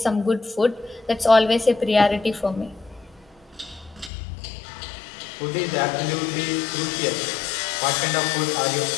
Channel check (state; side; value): drops out; right; at 4.1 s